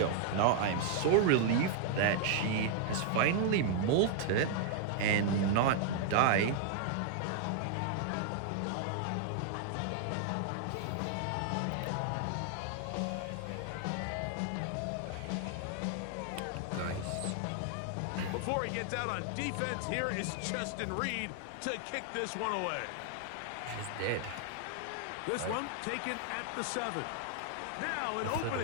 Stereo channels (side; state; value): both; different; correlation 0.00